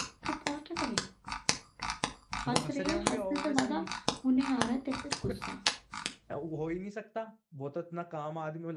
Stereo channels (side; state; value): both; identical; correlation 1.00